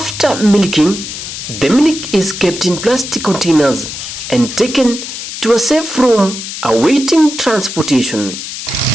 milking, the milk is kept in plastic containers and taken to a safe room awaiting transportation.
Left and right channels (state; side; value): noise; left; hiss, 8 dB below the sound